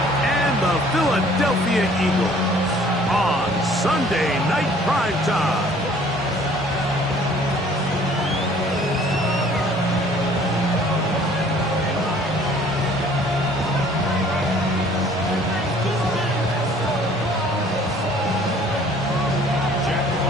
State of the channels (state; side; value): normal; both; correlation 0.55